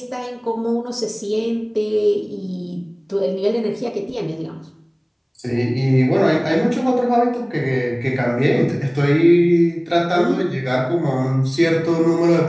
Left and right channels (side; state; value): both; identical; correlation 1.00